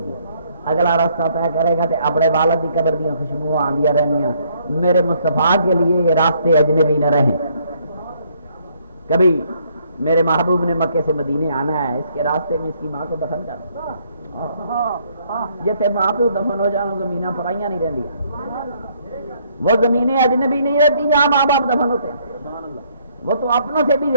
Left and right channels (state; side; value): inverted; both; correlation -0.67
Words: گی، اگلا راستہ طے کرے گا تو اپنے والد کی قبر دیا خوشبو آندیاں رہنیاں۔ میرے مصطفیٰ کے لیے یہ راستے اجنبی نہ رہیں۔ کبھی میرے محبوب نے مکے سے مدینے آنا ہے، اس کے راستے میں اس کی ماں کو دفن کرنا، جیسے ماں پہ دفن ہو جانا زمینیں پرائیاں نہیں رہتی، وہ زمینیں اجنبی نہیں رہتی جہاں ماں باپ دفن ہوتے ہیں، وہ تو اپنوں سے بھی